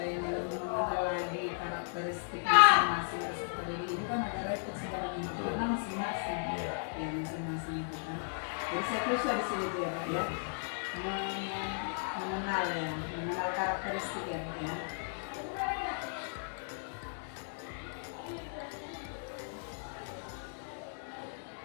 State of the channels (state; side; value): silent; right; digital silence